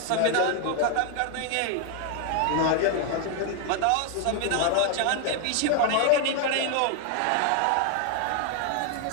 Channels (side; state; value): both; different; correlation 0.00